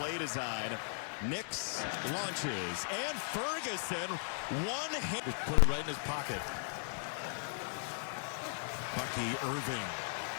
design. Nix launches, and Ferguson, one hit. Just put it right in his pocket. Bucky Irving.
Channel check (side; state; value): right; silent; 53 dB below the other